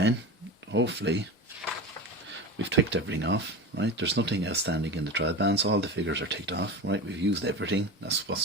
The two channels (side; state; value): both; normal; correlation 0.27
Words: hopefully, we've ticked everything off, right? There's nothing outstanding in the trial balance. All the figures are ticked off, right? We've used everything. That's